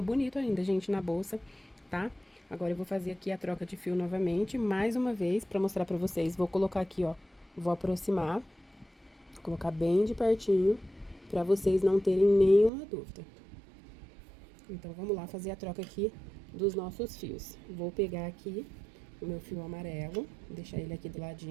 ainda, gente, na bolsa, tá? Agora eu vou fazer aqui a troca de fio novamente, mais uma vez, pra mostrar pra vocês. Vou colocar aqui, ó, vou aproximar, colocar bem de pertinho, pra vocês não terem nenhuma dúvida. Então, vamos lá fazer a troca aqui dos nossos fios. Vou pegar aqui o meu fio amarelo, deixar ele aqui do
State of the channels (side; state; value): left; drops out; at 12.7 s